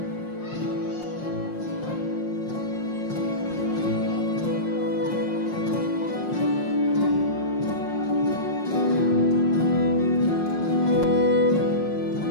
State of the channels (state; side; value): late; right; 5.6 ms